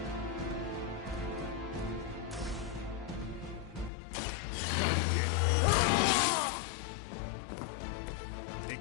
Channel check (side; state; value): right; drops out; at 3.9 s